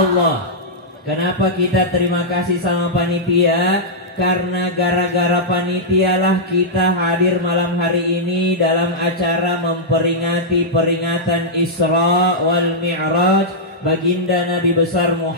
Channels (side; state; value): both; normal; correlation -0.10